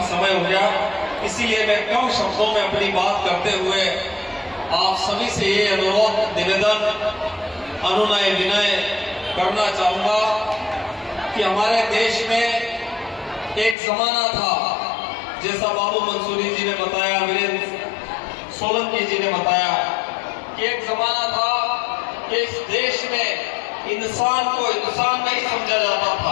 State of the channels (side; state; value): right; drops out; at 13.8 s